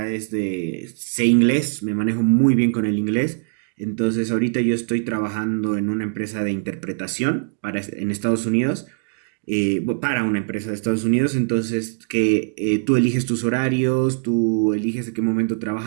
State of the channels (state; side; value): silent; left; digital silence